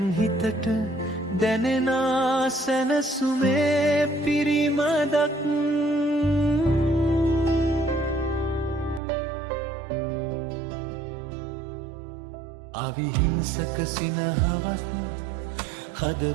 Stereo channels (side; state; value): left; drops out; at 9.0 s